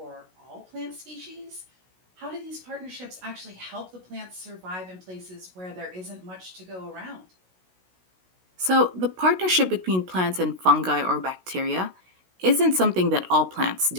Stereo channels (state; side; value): late; left; 16 ms